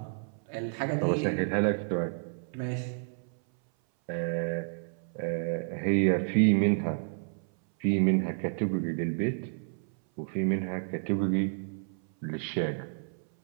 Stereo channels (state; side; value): silent; left; 57 dB below the other